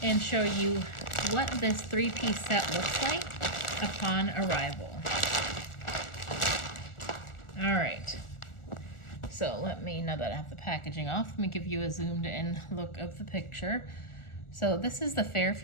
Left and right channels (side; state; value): right; late; 1.4 ms